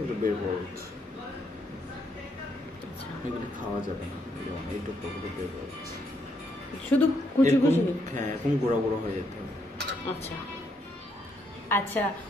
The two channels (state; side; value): normal; both; correlation 0.75